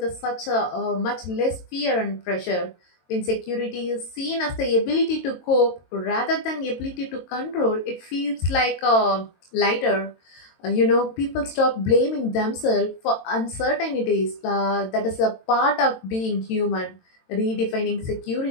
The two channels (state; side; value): late; right; 22 ms